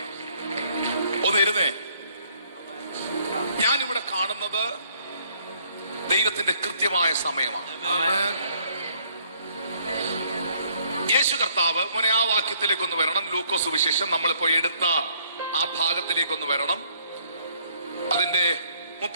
ഒന്നിരുന്നേ. ഞാനിവിടെ കാണുന്നത് ദൈവത്തിന്റെ കൃത്യമായ സമയമാണ്. യേശു കർത്താവ് മോനെ ആ വാക്യത്തിലേക്കൊന്ന് വരണം. ലൂക്കോസ് സുവിശേഷം നമ്മളിപ്പോ എടുത്ത ആ ഭാഗത്തിലേക്കൊന്ന് വരണം. അതിന്റെ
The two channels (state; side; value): inverted; both; correlation -0.65